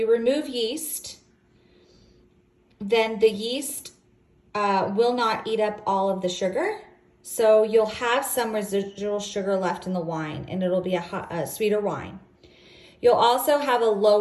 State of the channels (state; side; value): identical; both; correlation 1.00